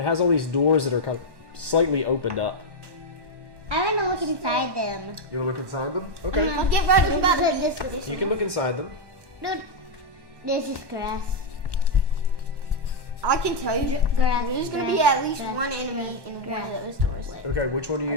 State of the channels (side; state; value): left; late; 1.1 ms